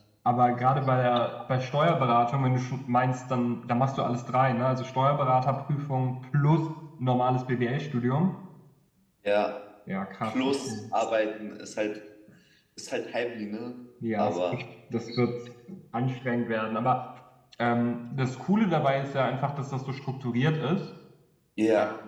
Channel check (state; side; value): identical; both; correlation 1.00